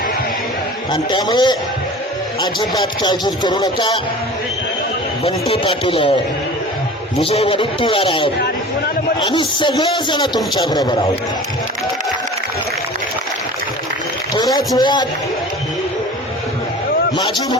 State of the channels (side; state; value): both; normal; correlation 0.39